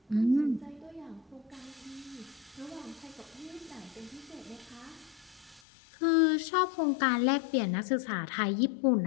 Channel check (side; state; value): right; drops out; at 5.6 s